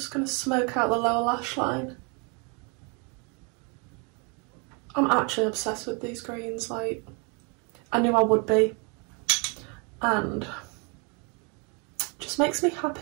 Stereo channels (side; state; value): left; quieter; 33.9 dB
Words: going to smoke out the lower lash line. I'm actually obsessed with these greens, like, I knew I would be, and just makes me